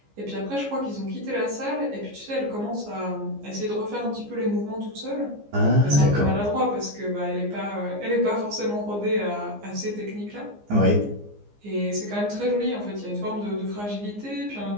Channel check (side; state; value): left; late; 15 ms